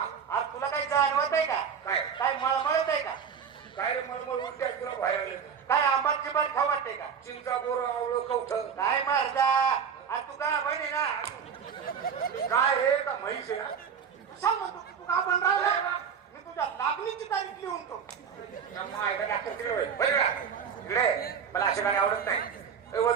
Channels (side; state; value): left; quieter; 7.0 dB